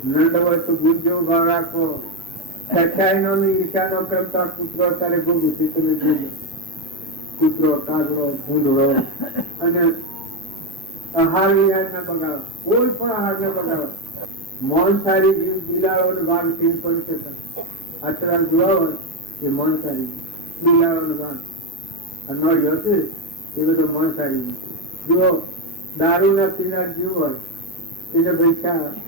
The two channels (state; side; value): normal; both; correlation 0.08